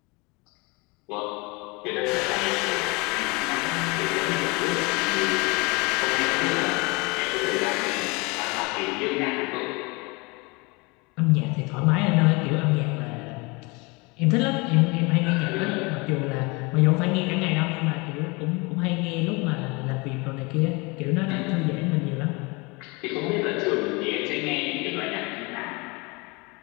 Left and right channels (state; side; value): quieter; right; 27.3 dB